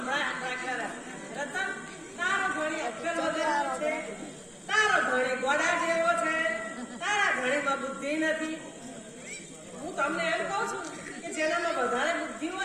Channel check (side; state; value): both; identical; correlation 1.00